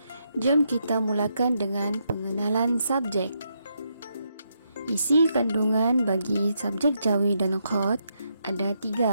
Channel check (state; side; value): inverted; both; correlation -0.80